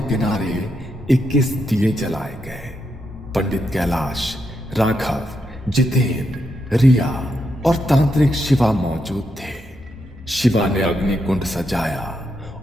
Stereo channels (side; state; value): both; normal; correlation 0.82